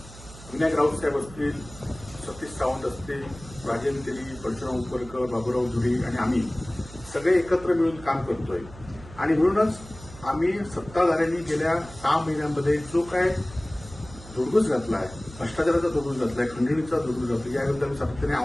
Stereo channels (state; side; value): noise; right; hum, 17 dB below the sound